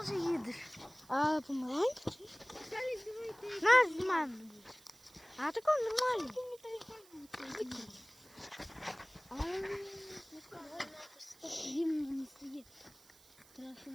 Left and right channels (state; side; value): noise; right; hiss, 25 dB below the sound